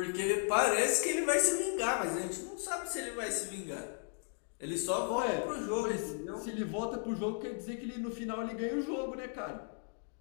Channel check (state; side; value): silent; right; 54 dB below the other